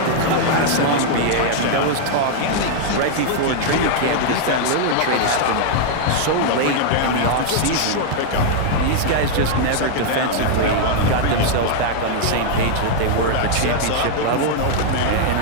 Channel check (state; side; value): different; both; correlation -0.01